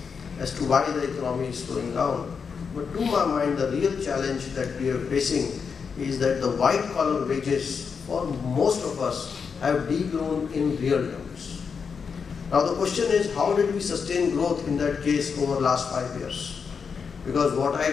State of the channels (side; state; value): right; quieter; 5.9 dB